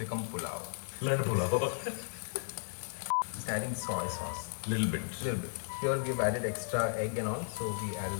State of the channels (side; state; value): right; silent; digital silence